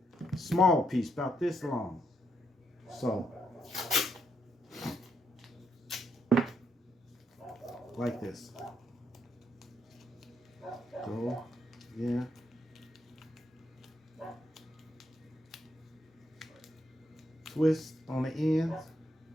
Small piece, about this long. So, like this. Go, yeah. Twist on the ends.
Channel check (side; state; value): both; normal; correlation 0.77